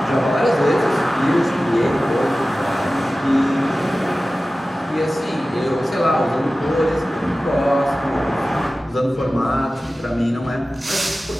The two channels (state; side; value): normal; both; correlation 0.96